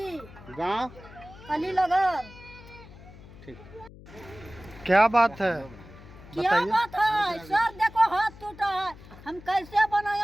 गांव? अलीनगर। ठीक। क्या बात है, क्या बताइए। बात है सर? देखो हाथ टूटा है, हम कैसे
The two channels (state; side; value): noise; left; hum, 19 dB below the sound